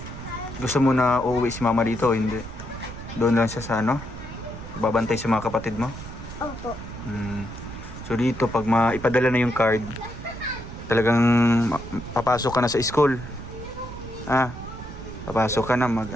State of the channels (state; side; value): noise; right; rumble, 11 dB below the sound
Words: Gusto mo na uuwi si mama dito o hindi? Doon lang siya sa ano? Babantay sa mga kapatid mo? Opo. So dito, pag maipadala na yung card, talagang papasok ka na sa school. Papasok ka na,